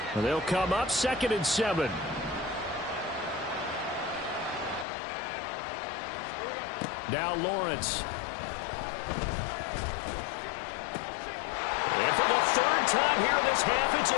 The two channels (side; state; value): right; drops out; at 4.9 s